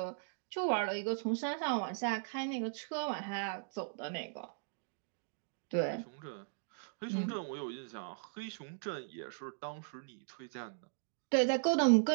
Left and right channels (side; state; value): left; silent; digital silence